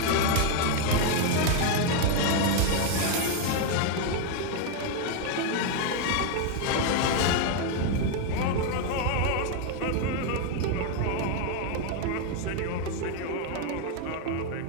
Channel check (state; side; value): different; both; correlation 0.01